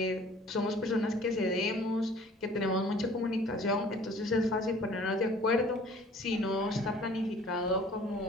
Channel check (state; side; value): normal; both; correlation 0.51